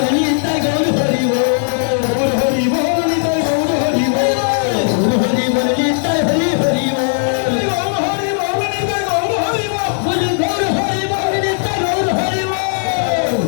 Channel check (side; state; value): right; silent; 61 dB below the other